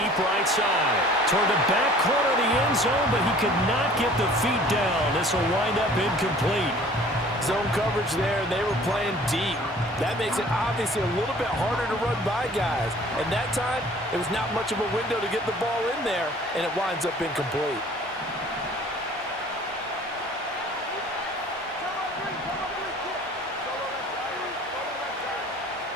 right side. Toward the back corner of the end zone, but he could not get the feet down. This will wind up incomplete. Zone coverage there, and they were playing deep. That makes it obviously a little bit harder to run by guys. And that time, it was not much of a window to get the ball in there, and it winds up incomplete.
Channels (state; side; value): normal; both; correlation 0.50